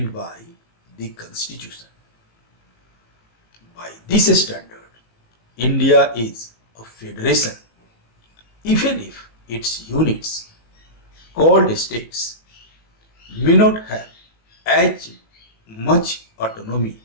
by the Constitution. By this standard, India is a federation, even if its units, called states, may not have as much autonomy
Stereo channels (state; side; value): late; right; 18 ms